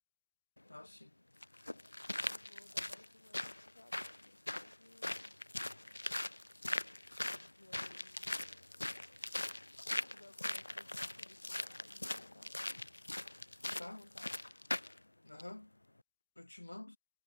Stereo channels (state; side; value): inverted; both; correlation -1.00